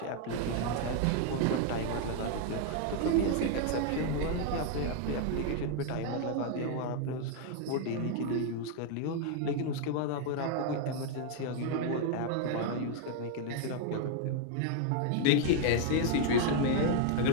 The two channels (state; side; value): different; both; correlation 0.00